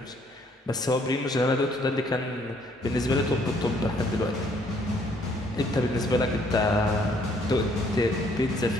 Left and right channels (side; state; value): both; normal; correlation 0.65